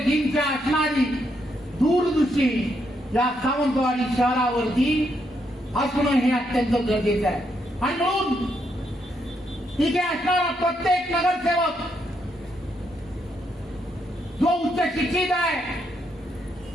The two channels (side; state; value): both; normal; correlation 0.77